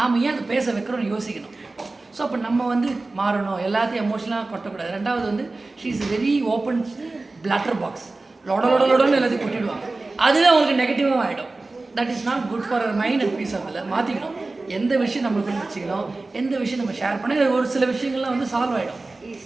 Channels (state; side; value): quieter; left; 3.3 dB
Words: ஏன் அதை பேச வைக்கிறோம்னு யோசிக்கணும். ஸோ அப்போ நம்ம வந்து மாறணும், எல்லாத்தையும் எமோஷனலாக கொட்டக்கூடாது. ரெண்டாவது வந்து she is very open platter box. லொடன்னு எல்லாத்தையும் கொட்டிடுவாங்க. அதுவே அவங்களுக்கு நெகட்டிவாக ஆகிடும். That is not good for her mind and peace of இல்லை. மாற்றிக்கணும். எந்த விஷயம் நம்மளுக்குள்ள வச்சுக்கணும், எந்த விஷயம் நம்ம ஷேர் பண்ணி ஒரு சில விஷயங்கள்லாம் வந்து சால்வ் ஆகிடும்.